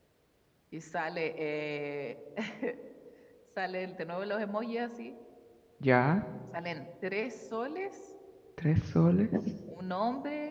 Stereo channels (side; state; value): both; identical; correlation 1.00